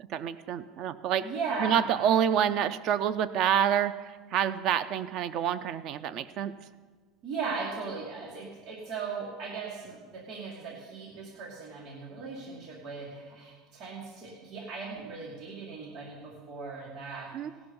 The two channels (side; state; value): left; quieter; 8.0 dB